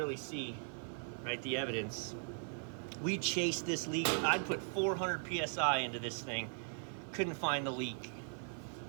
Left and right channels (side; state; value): left; silent; 52 dB below the other